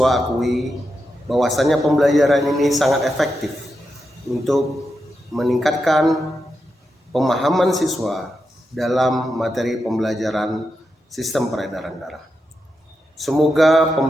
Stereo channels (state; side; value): normal; both; correlation 0.87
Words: akui bahwasanya pembelajaran ini sangat efektif untuk meningkatkan pemahaman siswa dalam materi pembelajaran sistem peredaran darah. Semoga